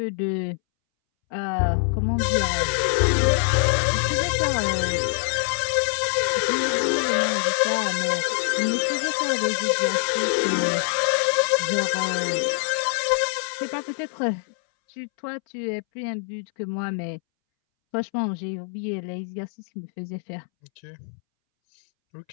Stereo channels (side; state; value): right; silent; 62 dB below the other